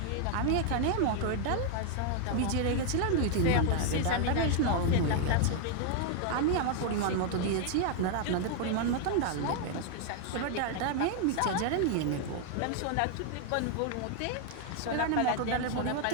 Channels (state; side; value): different; both; correlation 0.00